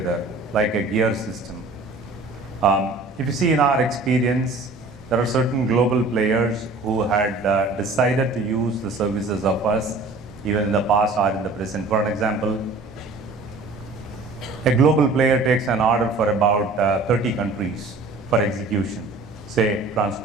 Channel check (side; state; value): left; quieter; 3.3 dB